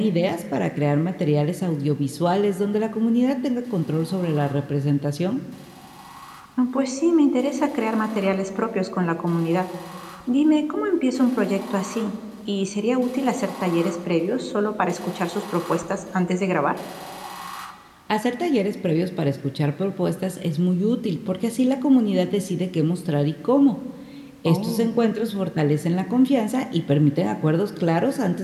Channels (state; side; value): identical; both; correlation 1.00